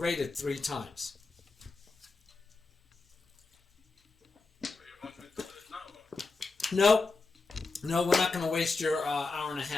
3 times. You want me to do it now? No, we're not going to waste your hour and a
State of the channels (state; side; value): quieter; right; 3.9 dB